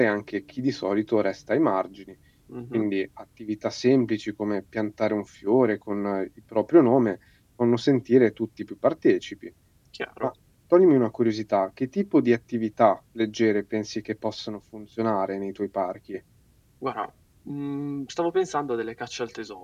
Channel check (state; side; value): identical; both; correlation 1.00